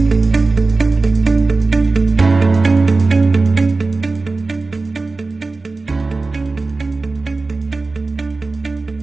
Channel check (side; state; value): left; quieter; 3.6 dB